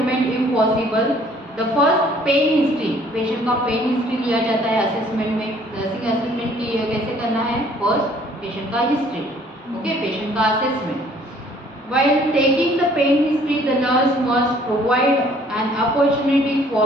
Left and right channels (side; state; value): both; normal; correlation 0.58